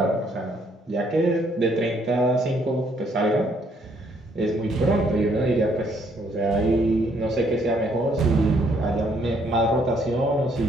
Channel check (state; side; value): normal; both; correlation 0.68